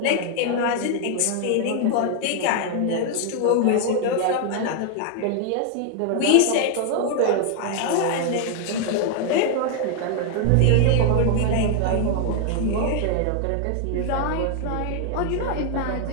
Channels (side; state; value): both; different; correlation 0.00